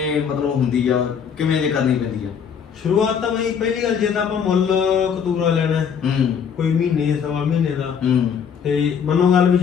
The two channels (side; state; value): right; quieter; 7.2 dB